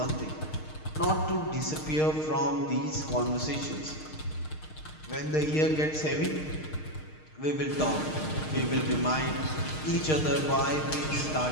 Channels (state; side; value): late; right; 6.5 ms